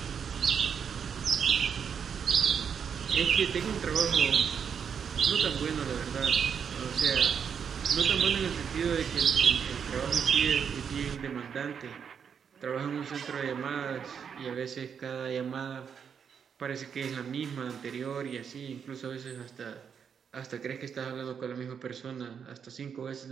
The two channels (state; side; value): quieter; left; 7.2 dB